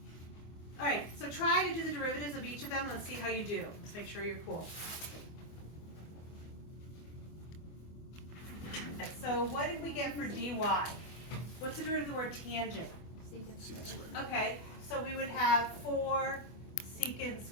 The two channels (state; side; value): late; right; 24 ms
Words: All right, so try to do the derivatives of each of them. Let's see how you do. Let's make sure you're cool. So what did we get for dy? What's the derivative of the word tangent? Okay, so we would have 4 secant